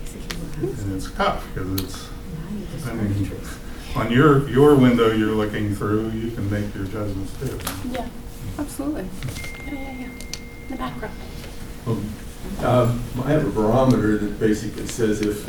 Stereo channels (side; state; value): both; identical; correlation 1.00